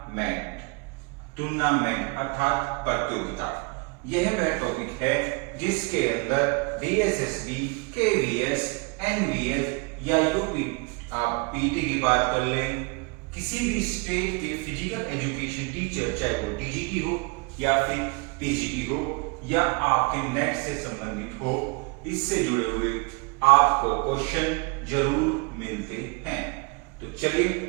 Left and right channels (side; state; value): left; quieter; 30.2 dB